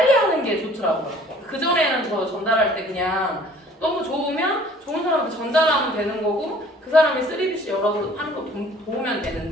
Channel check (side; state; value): both; normal; correlation 0.53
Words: 하는 게 좋더라고요. 그전에는 저 전달할 때 그냥 너무 좋으면 좋은 사람한테 전달하면 되는 거고 그 사람이 3BC 열어서 하는 거 도우면